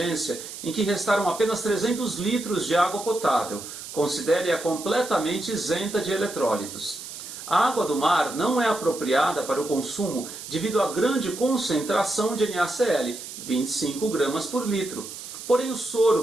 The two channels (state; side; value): noise; right; hiss, 11 dB below the sound